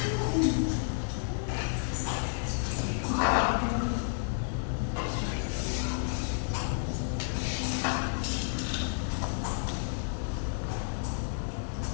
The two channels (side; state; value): right; silent; digital silence